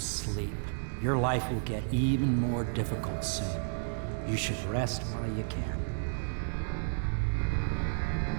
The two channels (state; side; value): silent; left; 56 dB below the other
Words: Your life will get even more difficult soon. You should rest while you can.